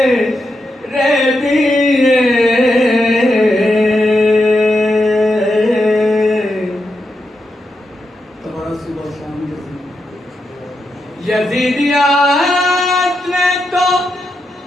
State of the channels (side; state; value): both; normal; correlation 0.85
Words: دیے. تمہارا صبح شام یزیدیات نے تو